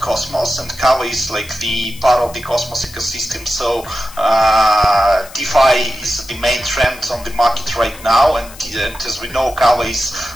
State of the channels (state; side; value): noise; left; hiss, 18 dB below the sound